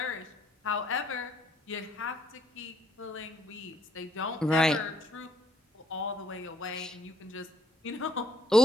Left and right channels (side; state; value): both; normal; correlation 0.67